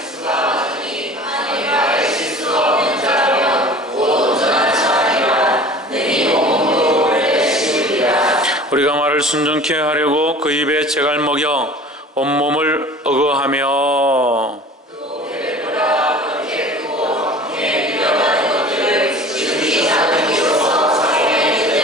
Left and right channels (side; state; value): both; normal; correlation 0.42